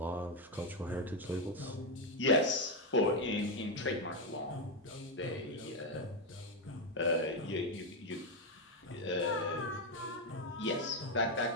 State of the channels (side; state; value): both; normal; correlation 0.06